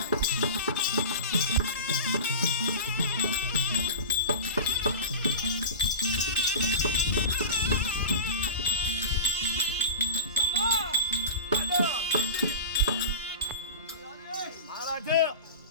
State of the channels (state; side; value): inverted; both; correlation -0.30